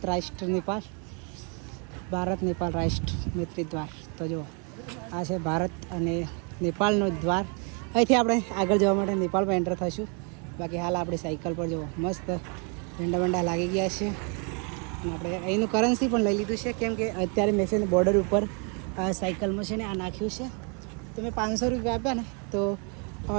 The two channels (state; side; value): quieter; left; 37.0 dB